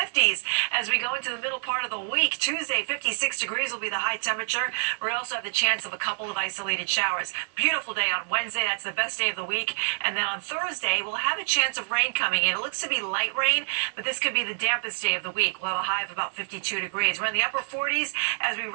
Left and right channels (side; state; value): left; silent; 55 dB below the other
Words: as we go into the middle part of the week. Tuesday, 56 degrees will be the high temperature. We also have the chance of a couple of isolated showers. Beautiful day on Wednesday. That's the best day of the week. And then on Thursday, we'll have a chance of rain coming in. It looks to be light rain, but this could be the dampest day of the week. We'll have a high of about 52 degrees. We're in the upper 40s as we